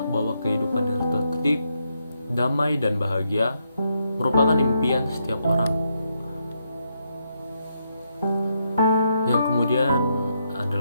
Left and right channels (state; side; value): inverted; both; correlation -0.79